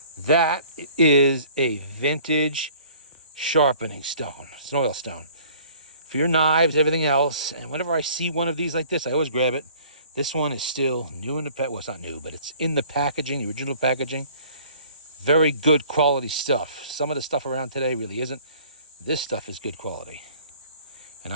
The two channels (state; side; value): inverted; both; correlation -0.52